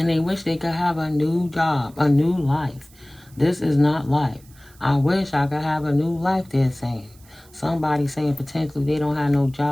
they wish they could have a new job, a new life. This is not life. I wish I could have a new life, they're saying. Somebody saying potentially they don't have no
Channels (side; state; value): right; noise; hiss, 27 dB below the sound